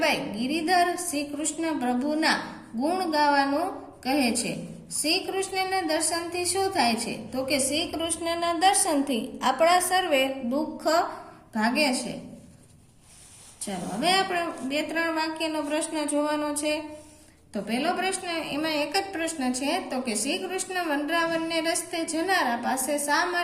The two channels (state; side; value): identical; both; correlation 1.00